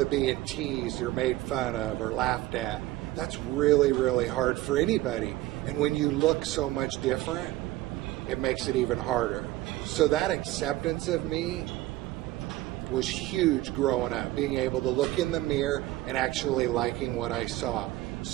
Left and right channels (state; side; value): quieter; left; 16.5 dB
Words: being teased or made fun of or laughed at. That's really, really hard for anybody. And when you look so much different, it makes it even harder. So that acceptance of me was huge growing up, being able to look in the mirror and actually liking what I saw.